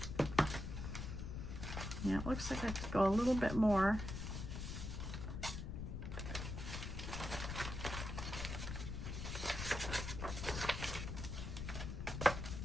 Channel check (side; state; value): left; noise; rumble, 5 dB below the sound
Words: Yeah, it looks like I could go a little bit more.